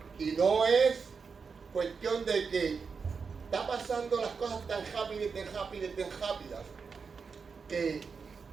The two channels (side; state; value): left; quieter; 5.4 dB